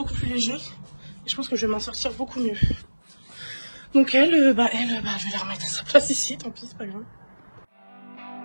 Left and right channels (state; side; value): inverted; both; correlation -1.00